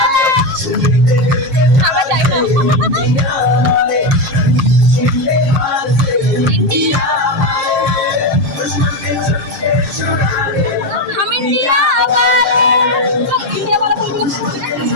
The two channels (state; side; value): late; left; 6.5 ms